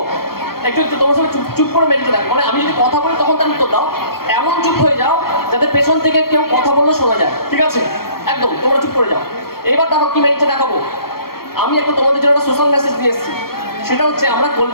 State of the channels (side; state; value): right; late; 0.94 ms